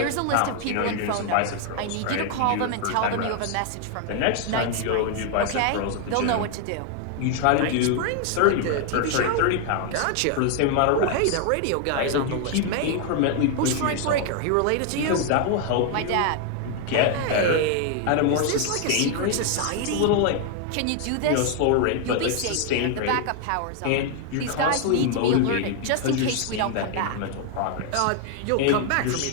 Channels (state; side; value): different; both; correlation 0.00